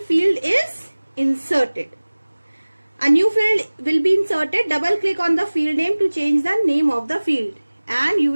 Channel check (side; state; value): both; inverted; correlation -1.00